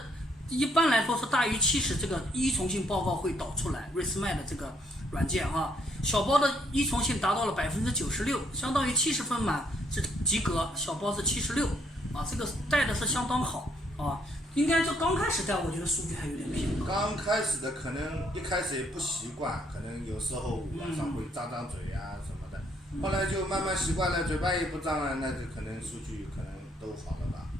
一般来说是大于70，这个依从性报告会导出来 ，ResMed 的这个软件啊，小包的依从性达到了96%，相当于70分满是及格，小包是76啊，这个带的是相当好啊。应该就刚开始带，我觉得数据还有点偏高。刚开始的可能一开始也不习惯，可能有时候晚上会张嘴啊什么的，后来就慢慢习惯了，嘴巴也不张了，那就可能数据可能都好了吧。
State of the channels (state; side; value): normal; both; correlation 0.70